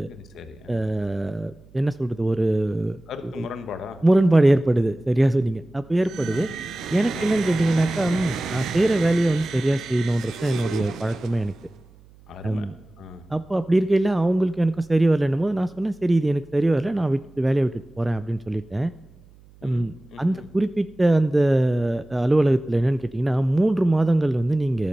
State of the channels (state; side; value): noise; right; hum, 27 dB below the sound